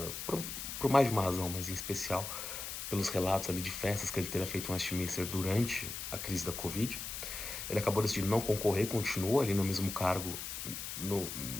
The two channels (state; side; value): noise; left; hiss, 6 dB below the sound